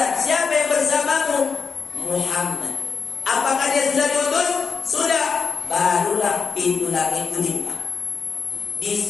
Siapa yang bersamamu? Muhammad. Apakah dia sudah diutus? Sudah. Barulah pintu langit itu dibuka. Di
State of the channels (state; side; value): quieter; right; 5.5 dB